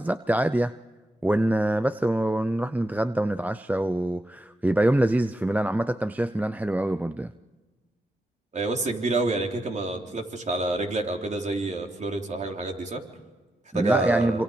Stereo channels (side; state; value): both; normal; correlation 0.86